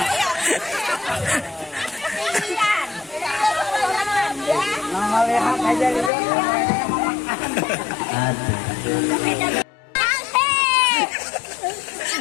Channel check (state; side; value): drops out; right; at 6.1 s